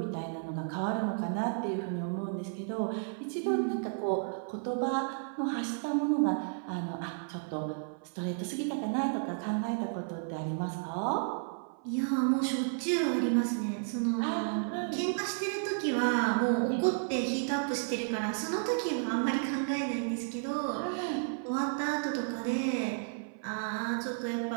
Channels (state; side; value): silent; left; 56 dB below the other